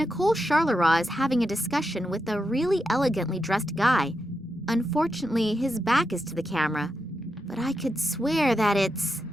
Charleroi is having a discussion with a really elegantly dressed guy. Unfortunately, his back is to the camera, but I could swear that it's...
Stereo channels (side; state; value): both; normal; correlation 0.86